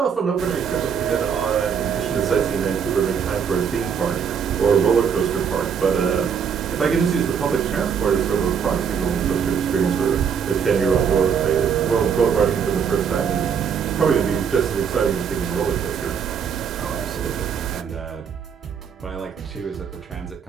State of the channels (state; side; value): quieter; left; 7.1 dB